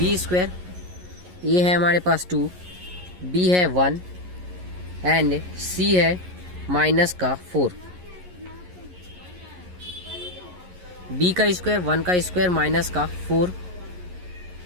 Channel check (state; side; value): late; left; 11 ms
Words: square. a है हमारे पास 2, b है 1 एंड c है माइनस का 4। b का स्क्वायर 1 का स्क्वायर माइनस का 4,